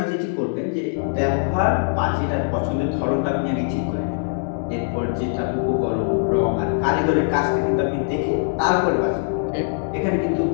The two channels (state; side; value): silent; right; digital silence